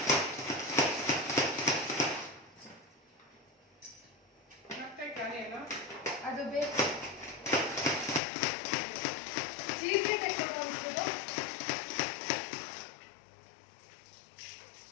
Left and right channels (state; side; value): drops out; right; at 8.2 s